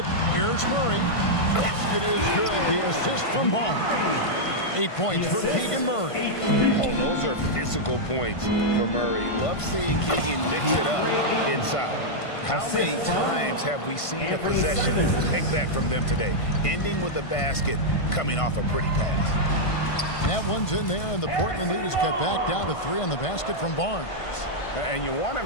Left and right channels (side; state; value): right; late; 1.5 ms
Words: Here's Murray. Basket is good. The assist from Barnes. 8 points for Keegan Murray. Oh, those are physical points for Murray. Love seeing Keegan mix it up inside. How many times have we seen a possession like that from them today? Ending with a basket, coming off a pretty pass. That one's in there, and the Portland lead is cut back down to 3 on the basket from Barnes. And you want